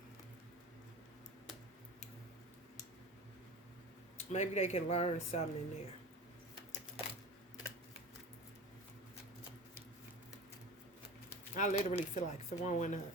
Maybe they can learn something in there. I literally feel like throwing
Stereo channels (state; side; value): normal; both; correlation 0.34